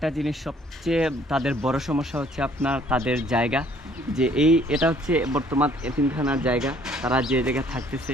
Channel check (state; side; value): normal; both; correlation 0.60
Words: জিনিস সবচেয়ে তাদের বড় সমস্যা হচ্ছে তাদের জায়গা। যে এটা হচ্ছে বর্তমান এতিমখানার জায়গা, তারা যে জায়গায় থাকতেছে,